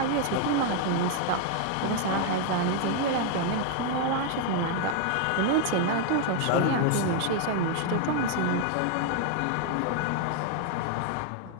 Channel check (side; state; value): both; different; correlation 0.00